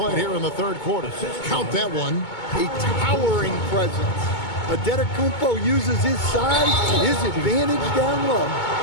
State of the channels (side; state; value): right; late; 2.2 ms